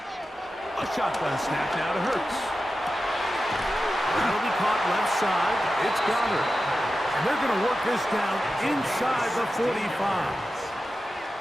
A shotgun snap now to Hurts. That'll be caught left side. It's Goddard. And they're going to work this down inside the 45.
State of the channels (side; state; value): both; normal; correlation 0.92